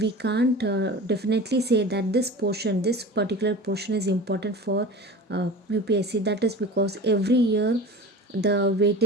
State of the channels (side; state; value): both; normal; correlation 0.35